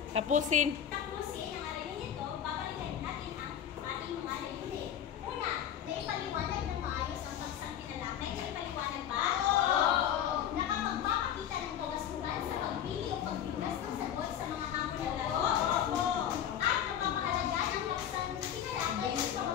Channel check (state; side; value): quieter; right; 9.9 dB